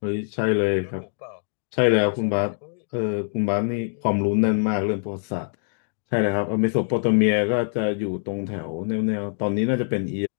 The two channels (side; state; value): right; silent; digital silence